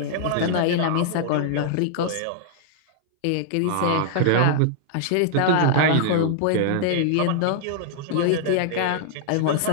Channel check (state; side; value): different; both; correlation -0.01